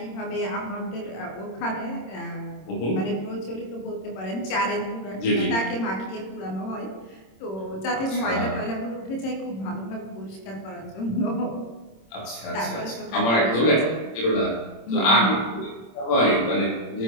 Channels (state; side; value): late; right; 26 ms